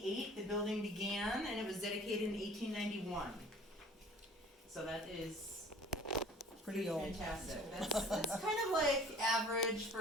The building began, and it was dedicated in 1891. So that is pretty old. Fantastic. That's kind of like average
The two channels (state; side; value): normal; both; correlation 0.49